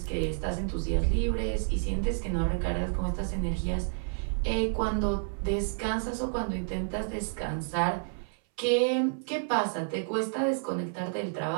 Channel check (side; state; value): left; silent; 58 dB below the other